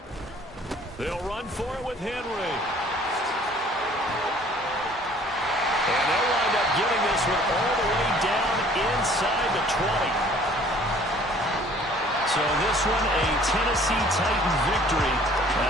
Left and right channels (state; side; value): normal; both; correlation 0.54